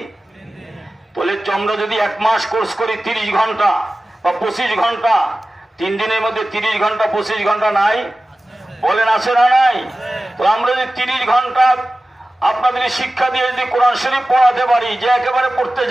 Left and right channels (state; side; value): normal; both; correlation 0.95